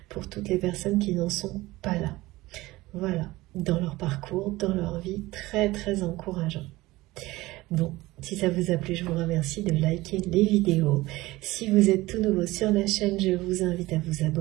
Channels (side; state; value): left; quieter; 19.2 dB